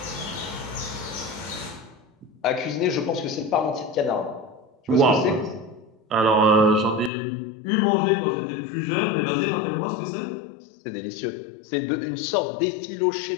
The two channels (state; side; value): drops out; right; at 7.1 s